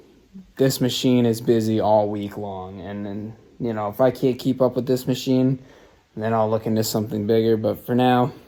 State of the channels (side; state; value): both; identical; correlation 1.00